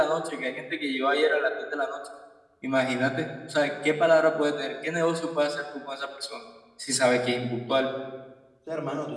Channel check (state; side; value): identical; both; correlation 1.00